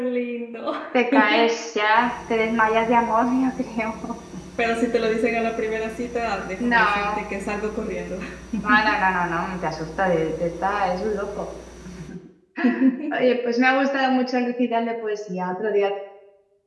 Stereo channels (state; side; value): identical; both; correlation 1.00